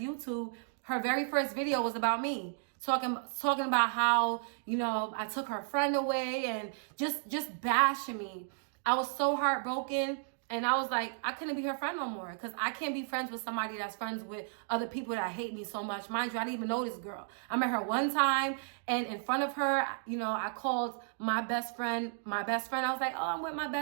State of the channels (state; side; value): silent; left; digital silence